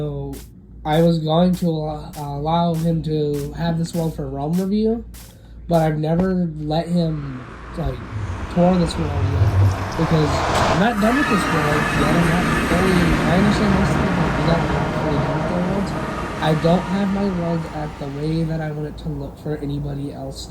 I was going to allow him to have this world for a realm review, but I've never let him, like, tour this world yet, because I'm not done with this world yet. I'm not fully, I understand this thing, but I'm not fully done with the worlds. I don't have my world at the way that I want it to look for anybody else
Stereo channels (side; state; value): both; identical; correlation 1.00